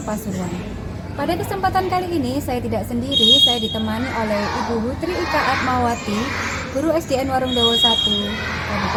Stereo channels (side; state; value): both; identical; correlation 1.00